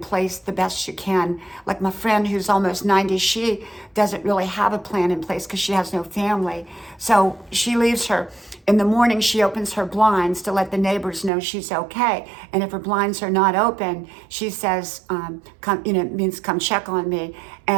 the best you can. Like my friend who's almost 90, she doesn't really have a plan in place because she has no family. So she leaves in the morning, she opens her blinds to let the neighbors know she's okay. And if her blinds are not open, she says, it means come check on me.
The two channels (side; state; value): left; drops out; at 11.3 s